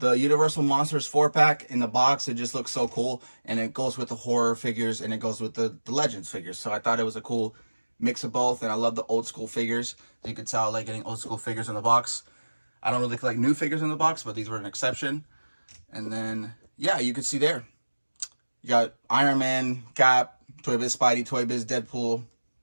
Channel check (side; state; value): both; inverted; correlation -1.00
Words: Universal Monsters 4-pack in the box, it just looks so cool. And it goes with the horror figures, and it goes with the Legends figures. So I thought it was a cool mix of both, and I love the old school figures. You could tell I like getting old school figures in the box. I don't really collect new figures in the box, but these were an exception. And then, yeah, you could see there. You got Iron Man, Cap, Toy Biz Spidey, Toy Biz Deadpool.